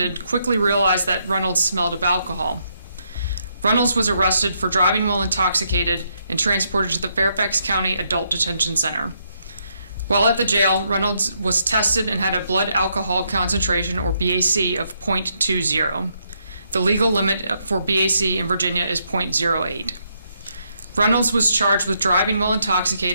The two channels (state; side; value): inverted; both; correlation -0.76